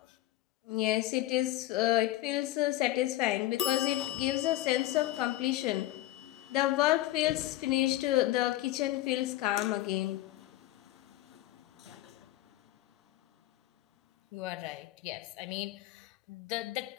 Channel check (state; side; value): quieter; right; 15.9 dB